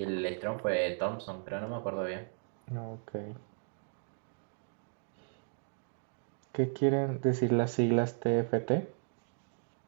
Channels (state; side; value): silent; left; digital silence